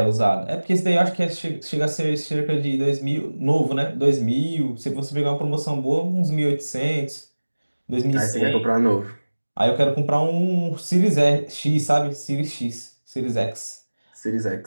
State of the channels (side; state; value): both; inverted; correlation -1.00